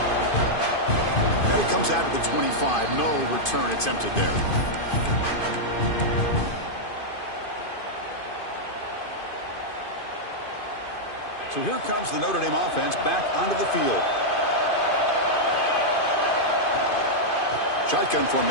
Now he comes out to the 25. No return attempted there. So here comes the Notre Dame offense back onto the field. Shotgun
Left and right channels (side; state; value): right; late; 2.5 ms